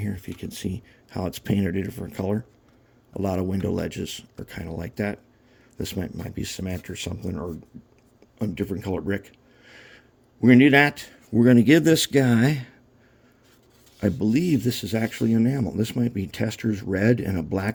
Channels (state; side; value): identical; both; correlation 1.00